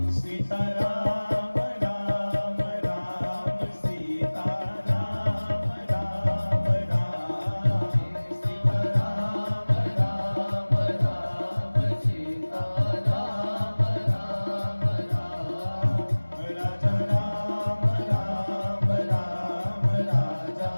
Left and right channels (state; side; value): inverted; both; correlation -1.00